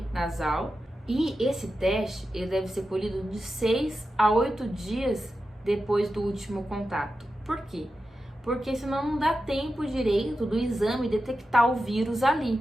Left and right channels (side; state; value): both; normal; correlation 0.91